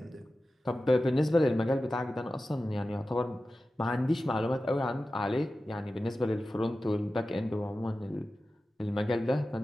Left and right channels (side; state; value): both; normal; correlation 0.94